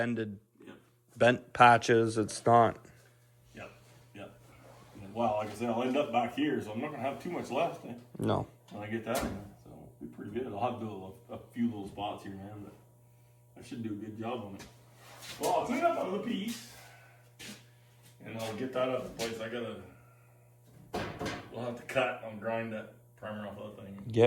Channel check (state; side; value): identical; both; correlation 1.00